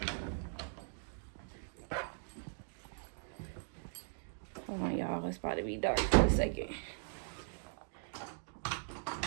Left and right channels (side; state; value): left; silent; digital silence